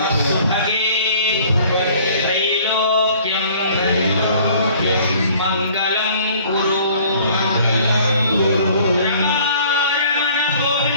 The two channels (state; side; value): inverted; both; correlation -0.53